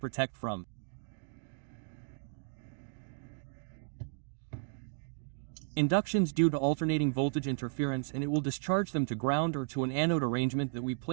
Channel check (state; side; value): silent; left; digital silence